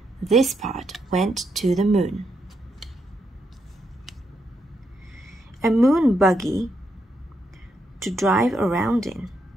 This part went to the moon. A moon buggy to drive around in.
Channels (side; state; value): both; normal; correlation 0.80